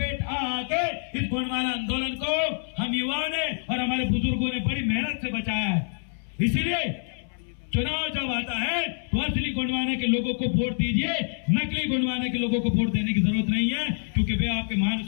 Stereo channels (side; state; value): right; silent; 58 dB below the other